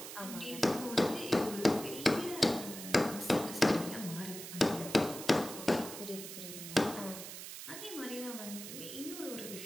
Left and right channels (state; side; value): noise; right; hiss, 10 dB below the sound